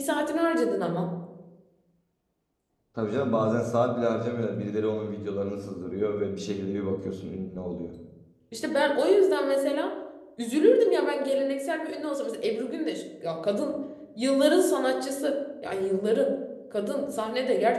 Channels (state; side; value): identical; both; correlation 1.00